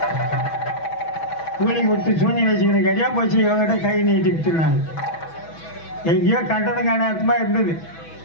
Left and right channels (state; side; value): late; right; 6.1 ms